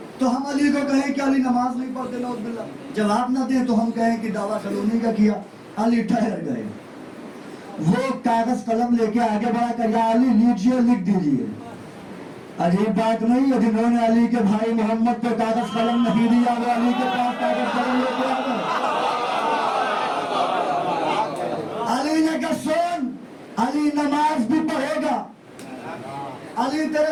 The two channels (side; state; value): both; identical; correlation 1.00